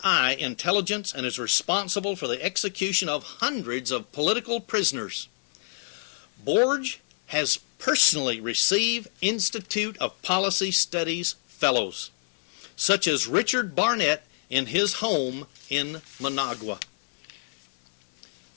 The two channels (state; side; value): silent; right; 57 dB below the other